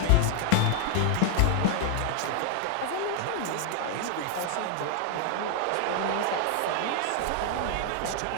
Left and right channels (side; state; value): both; different; correlation 0.00